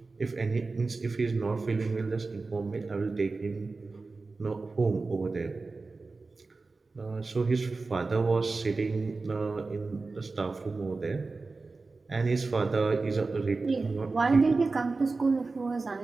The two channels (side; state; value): left; quieter; 3.8 dB